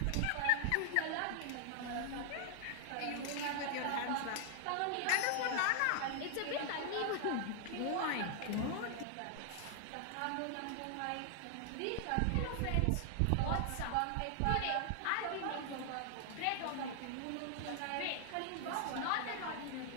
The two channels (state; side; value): different; both; correlation 0.00